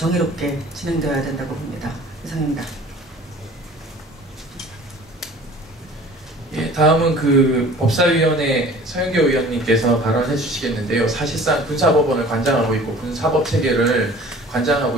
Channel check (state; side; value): normal; both; correlation 0.46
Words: 진행되어야 된다고 봅니다. 이상입니다. 예, 다음은 그 법사위원회 서영교 의원님께서 발언해 주시겠는데요. 사실상 군사법원을 관장하고 있고 군사법체계를 관장하고